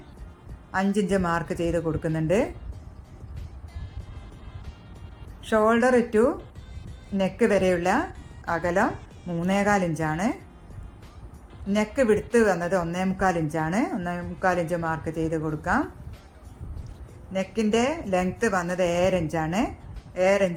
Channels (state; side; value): identical; both; correlation 1.00